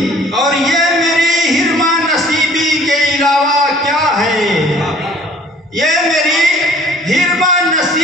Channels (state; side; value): normal; both; correlation 0.53